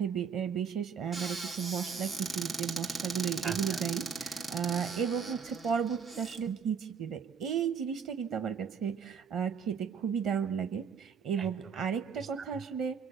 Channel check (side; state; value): left; quieter; 6.4 dB